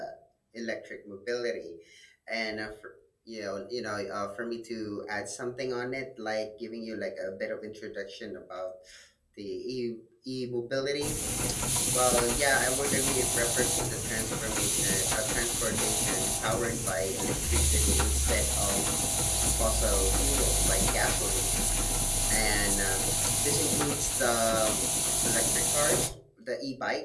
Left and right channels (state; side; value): identical; both; correlation 1.00